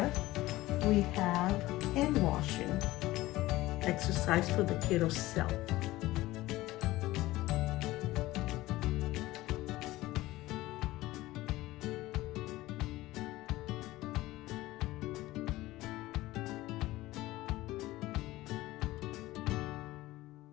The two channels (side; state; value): right; quieter; 17.7 dB